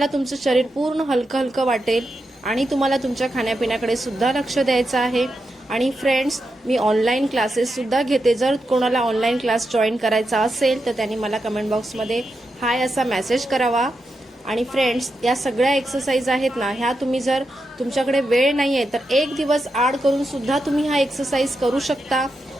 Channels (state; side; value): normal; both; correlation 0.86